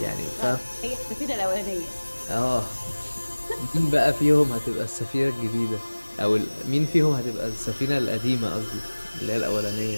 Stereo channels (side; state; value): both; inverted; correlation -1.00